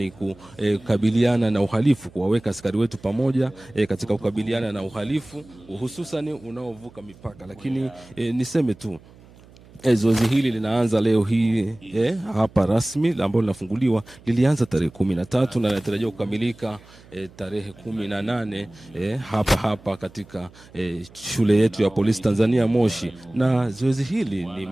kukabiliana na uhalifu, kuwaweka askari wetu pamoja katika kukabiliana na uhalifu hususan unaovuka mipaka. Lakini niseme tu zoezi hili linaanza leo hii hapa rasmi ambalo linafunguliwa, lilianza tarehe 13 na linatarajiwa kukamilika tarehe 18 hapa katika shule yetu ya polisi Tanzania Moshi. Na zoezi hili ni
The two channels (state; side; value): noise; right; hum, 24 dB below the sound